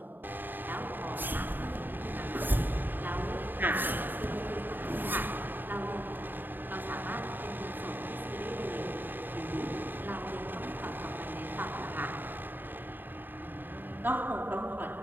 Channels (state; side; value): late; left; 0.092 ms